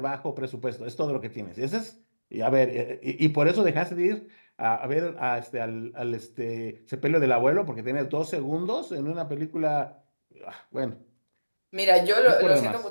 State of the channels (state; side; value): inverted; both; correlation -1.00